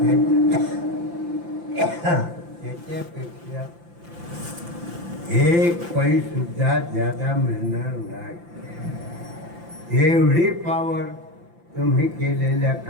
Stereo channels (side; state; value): left; late; 5.8 ms